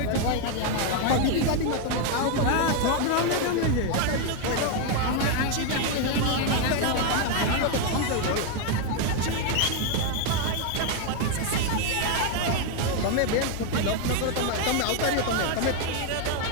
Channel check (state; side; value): different; both; correlation 0.01